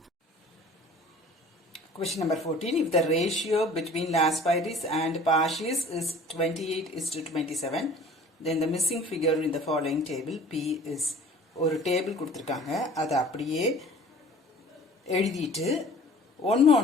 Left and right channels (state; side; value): normal; both; correlation 0.47